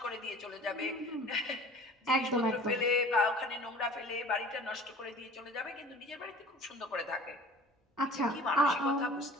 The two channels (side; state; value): both; normal; correlation 0.45